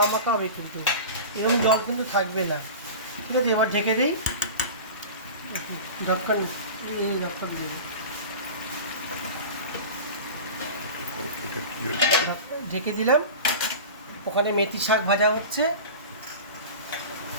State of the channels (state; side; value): inverted; both; correlation -0.33